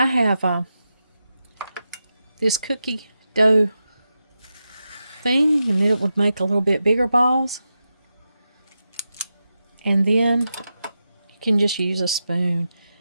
have this cookie dough thing, and it would make a little bit bigger balls. And then you can just use a spoon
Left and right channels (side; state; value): both; inverted; correlation -0.89